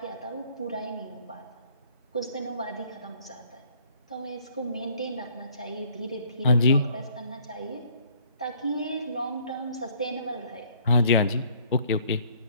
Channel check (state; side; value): inverted; both; correlation -0.59